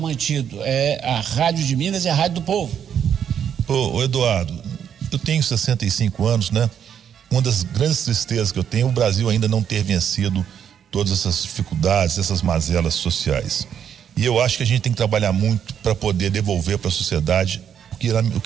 É a Rádio de Minas e a Rádio do Povo. Eduardo, eu tenho 65 anos, né? Uma das grandes tristezas que eu tenho é o Brasil ainda não ter vencido todas essas dificuldades, essas mazelas sociais. E eu acho que a gente tem que trabalhar muito para poder devolver para a sociedade o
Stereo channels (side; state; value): left; quieter; 8.6 dB